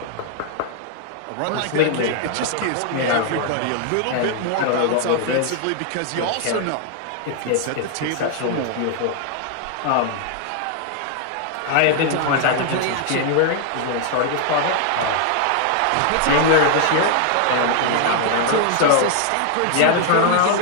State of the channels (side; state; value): both; different; correlation 0.00